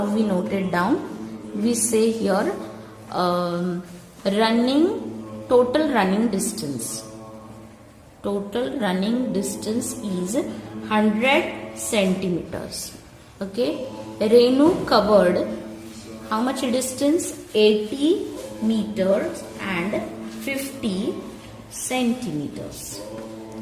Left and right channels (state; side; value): identical; both; correlation 1.00